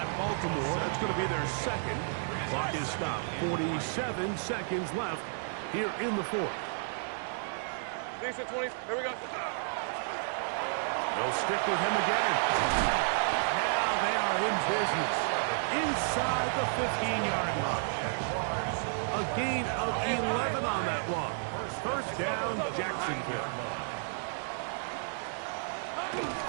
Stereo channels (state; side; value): silent; left; digital silence